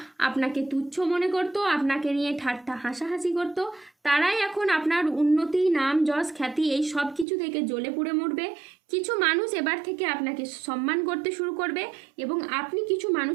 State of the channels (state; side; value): drops out; left; at 7.2 s